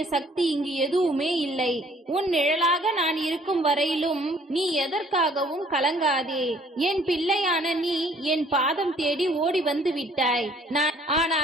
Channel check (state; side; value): normal; both; correlation 0.59